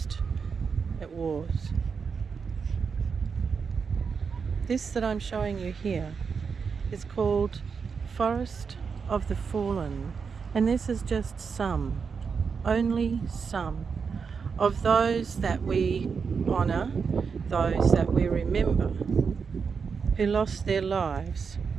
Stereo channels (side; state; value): left; quieter; 5.7 dB